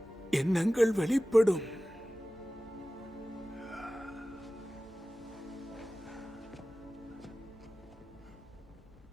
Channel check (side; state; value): both; normal; correlation 0.96